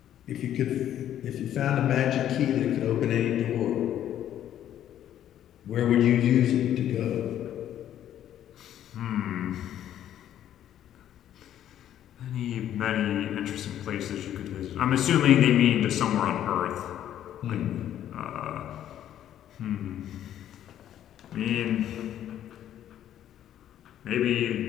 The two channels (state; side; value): quieter; right; 11.1 dB